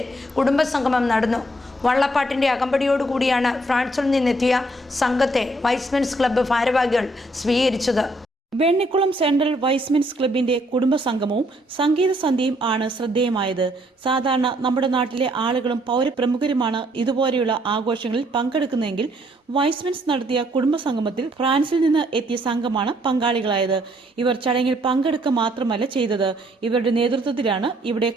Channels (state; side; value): normal; both; correlation 0.68